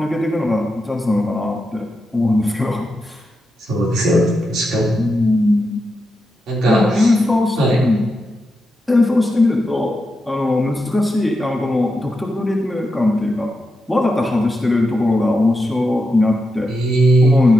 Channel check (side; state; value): both; normal; correlation 0.87